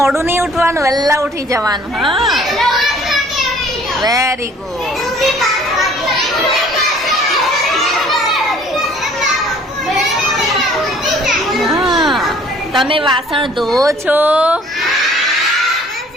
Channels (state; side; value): normal; both; correlation 0.55